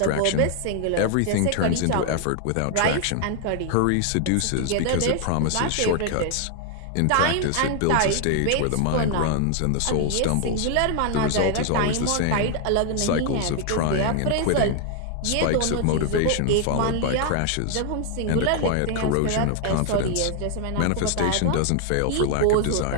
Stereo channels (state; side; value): different; both; correlation 0.00